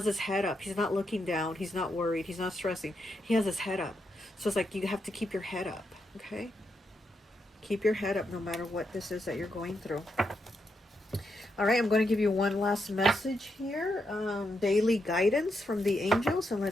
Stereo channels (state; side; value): normal; both; correlation 0.82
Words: his head up. He's not looking down. He's not worried. He's not stressing. He has his head up. So it's like you have to keep your head up, okay? Keep your head up no matter what this is that you're going through. All right, I'm going to give you one last message here. Daily guidance from the angels. And